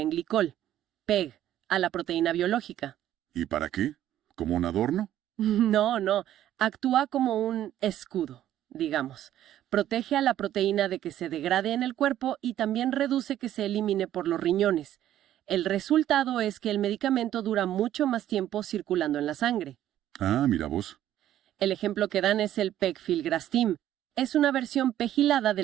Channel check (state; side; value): quieter; left; 12.2 dB